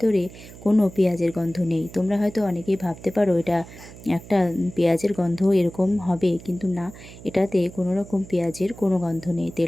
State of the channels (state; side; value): noise; right; hum, 17 dB below the sound